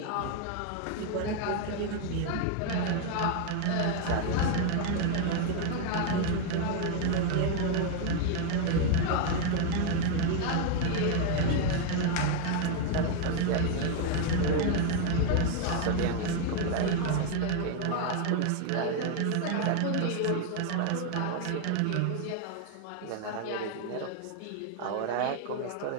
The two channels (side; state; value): both; different; correlation 0.01